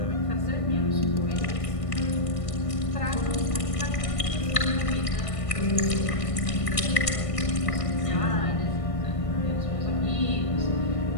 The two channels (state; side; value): late; right; 1.6 ms